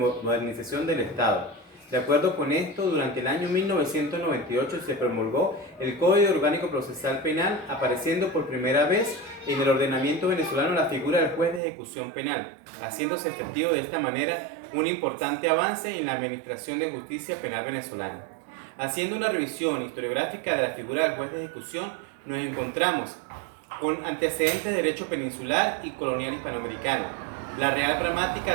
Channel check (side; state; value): left; drops out; at 11.6 s